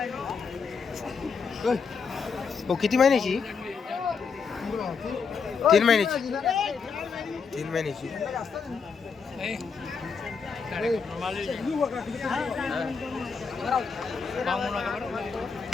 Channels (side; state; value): right; quieter; 5.6 dB